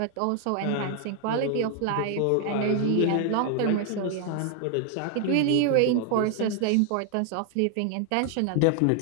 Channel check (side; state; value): both; different; correlation 0.00